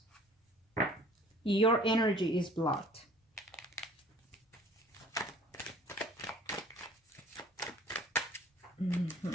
Your energy is blocked.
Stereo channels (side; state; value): both; normal; correlation 0.50